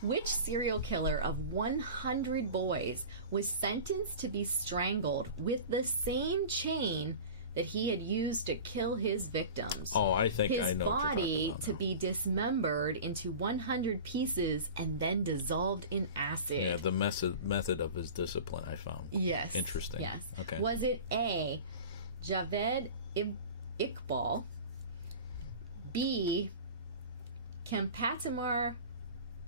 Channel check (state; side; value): inverted; both; correlation -0.35